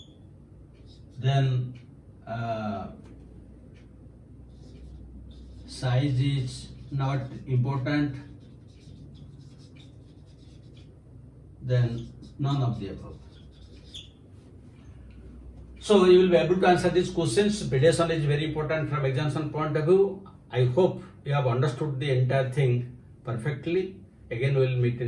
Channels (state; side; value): identical; both; correlation 1.00